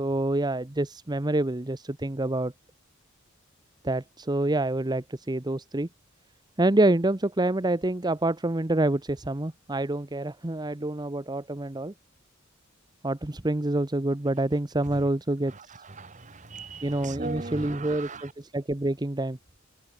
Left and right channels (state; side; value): normal; both; correlation 0.75